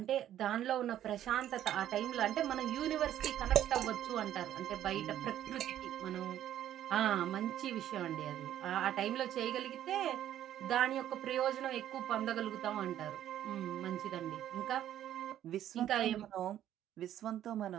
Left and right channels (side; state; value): left; quieter; 11.6 dB